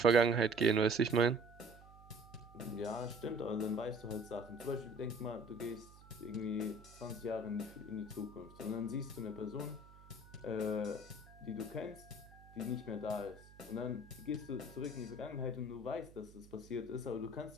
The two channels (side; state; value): right; noise; hum, 21 dB below the sound